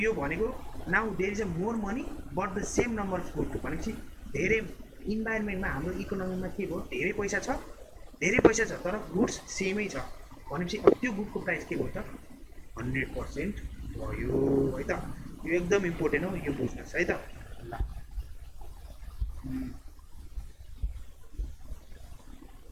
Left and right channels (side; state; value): both; identical; correlation 1.00